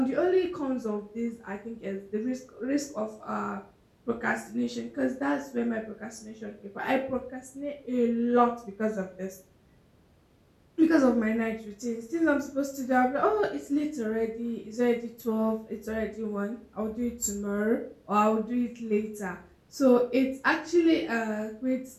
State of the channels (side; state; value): both; identical; correlation 1.00